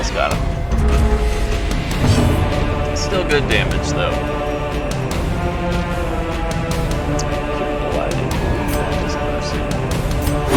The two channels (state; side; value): identical; both; correlation 1.00